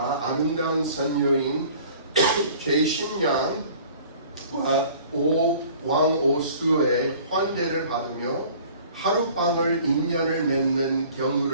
아름다운 선녀인 제신양과 왕오수의 환대를 받으며 하룻밤을 인연을 맺는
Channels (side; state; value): both; inverted; correlation -0.49